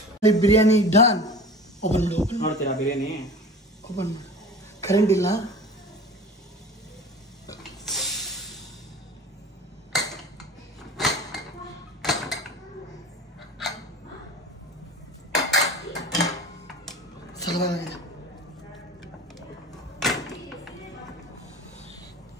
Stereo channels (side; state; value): both; normal; correlation 0.37